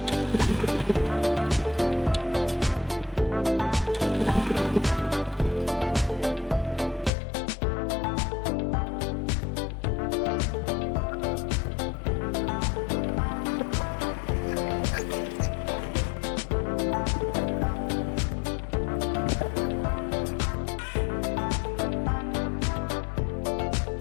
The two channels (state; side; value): drops out; right; at 7.1 s